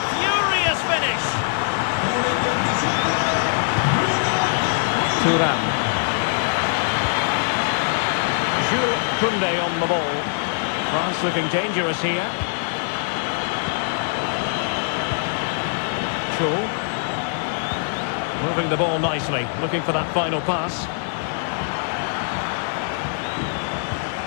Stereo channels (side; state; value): right; silent; digital silence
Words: furious finish. Thuram. Jules Koundé on the ball. France looking dangerous here. Cho. Moving the ball nicely, looking for that final pass.